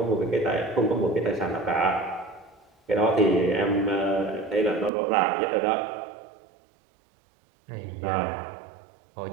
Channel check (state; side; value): drops out; left; at 4.9 s